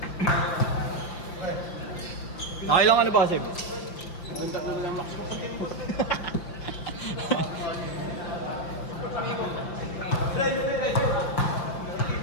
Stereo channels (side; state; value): right; late; 5.8 ms